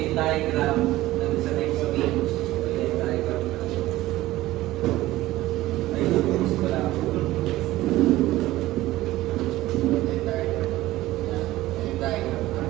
yung diagram, nandun sa next page. Okay, yung diagram na. Ayun, gusto ko lang. Yung diagram. Yan. Yung diagram na.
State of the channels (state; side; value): quieter; left; 16.6 dB